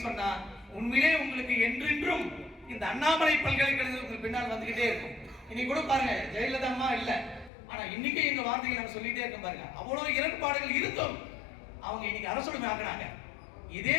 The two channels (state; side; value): drops out; right; at 7.5 s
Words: சொன்னா உண்மையிலே உங்களுக்கு என்றென்றும் இந்த அண்ணாமலை பல்கலைக்கழகத்துக்கு பின்னால் வந்துகிட்டே இருக்கும். இன்னைக்கு கூட பாருங்க, ஜெயலலிதா அம்மா இல்ல, ஆனா இன்னைக்கு எங்க வார்த்தைகள் நம்ம சொல்லிட்டே இருக்கோம் பாருங்க. அவ்வளவு இரண்டுபாடுகள் இருந்தும் அவங்க இன்னைக்கு அரசுடைமை ஆக்குறாங்க. இதே